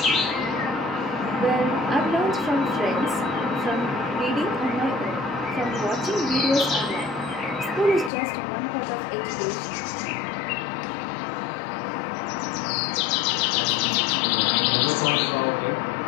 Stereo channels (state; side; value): drops out; right; at 8.1 s